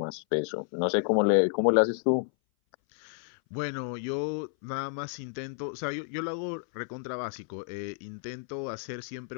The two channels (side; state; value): right; silent; 58 dB below the other